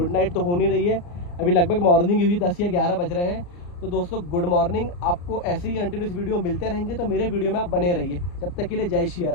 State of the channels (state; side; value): late; right; 34 ms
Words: नाइट तो हो नहीं रही है, अभी लगभग मॉर्निंग हुई 10 या 11 बज रहे हैं। तो दोस्तों गुड मॉर्निंग। आपको ऐसे ही कंटिन्यूस वीडियो मिलते रहेंगे, तो मेरे वीडियो में आप बने रहिए। जब तक के लिए जय श्री